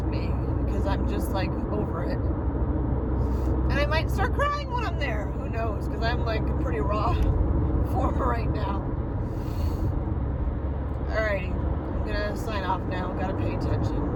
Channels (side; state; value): both; identical; correlation 1.00